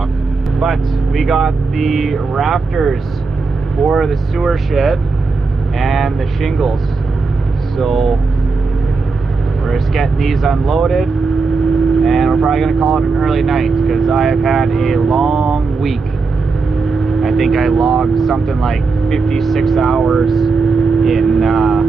But we got the rafters for the sewer shed and the shingles. So we're just getting these unloaded, and we're probably gonna call it an early night because I have had a long week. I think I logged something like 56 hours in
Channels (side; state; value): left; quieter; 4.3 dB